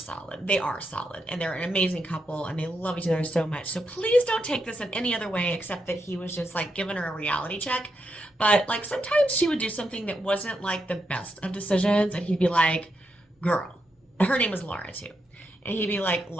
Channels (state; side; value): normal; both; correlation 0.83